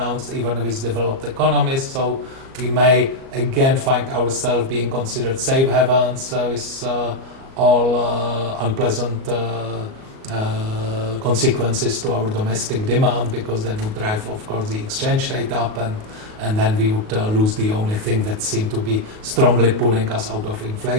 even with developed economies. So we may again find ourselves being considered safe havens with all unpleasant consequences to our domestic demand, because that would drive, of course, the exchange rate up, and then we would lose the only thing that seemed to be strongly pulling us out of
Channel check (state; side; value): late; left; 37 ms